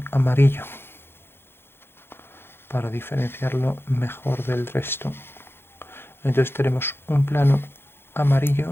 amarillo para diferenciarlo mejor del resto. Entonces tenemos un plano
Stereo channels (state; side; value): late; right; 0.11 ms